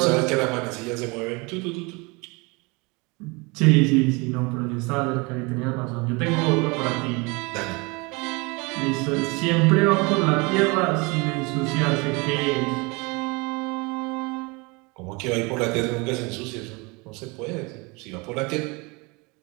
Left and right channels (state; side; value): quieter; left; 27.4 dB